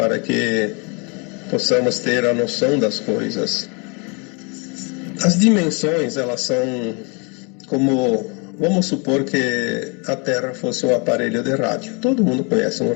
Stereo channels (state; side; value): quieter; right; 32.6 dB